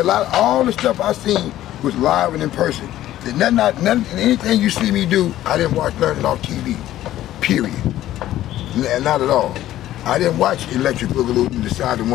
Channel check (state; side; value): quieter; right; 13.6 dB